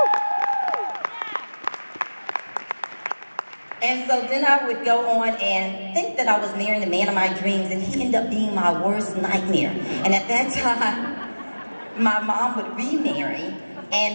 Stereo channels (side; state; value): both; inverted; correlation -1.00